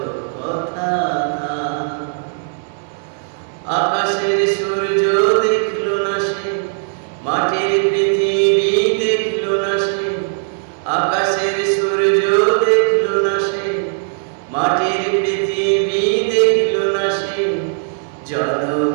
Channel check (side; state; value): left; silent; digital silence